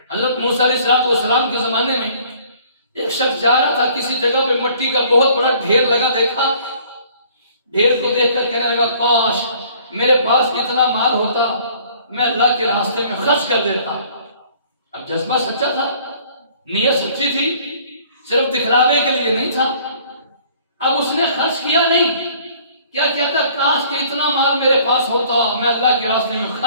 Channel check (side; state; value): both; inverted; correlation -0.56